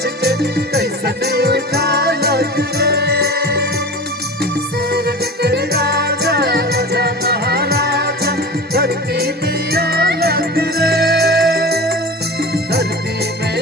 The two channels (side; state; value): both; normal; correlation 0.33